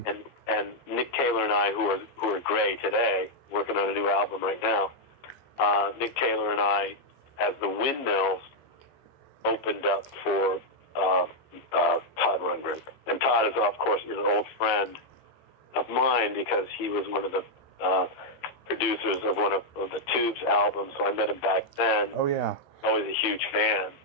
And Nick Taylor and I, who are Gray today, working on a new album right now. Nick Taylor and I, as the Windmills, opened up for Todd Rundgren. And Todd is, of course, an old friend of mine because he was one of the producers of one of the Tubes albums. So I met him back then. Oh, yeah. I was a huge fan,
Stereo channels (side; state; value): right; late; 14 ms